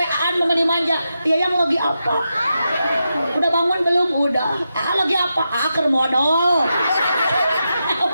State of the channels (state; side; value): inverted; both; correlation -0.87